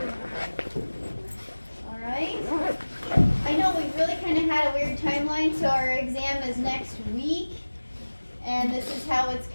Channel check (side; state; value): both; inverted; correlation -1.00